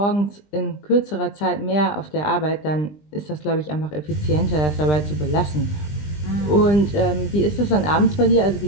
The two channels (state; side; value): late; right; 20 ms